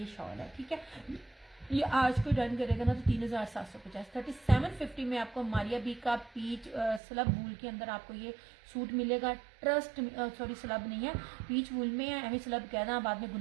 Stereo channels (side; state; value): left; drops out; at 7.0 s